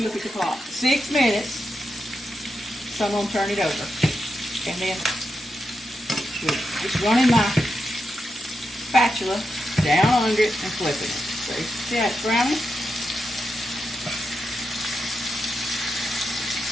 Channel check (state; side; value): normal; both; correlation 0.87